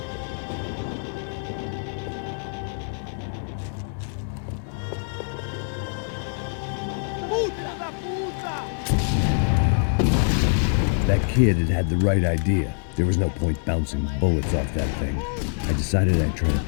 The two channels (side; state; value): right; silent; digital silence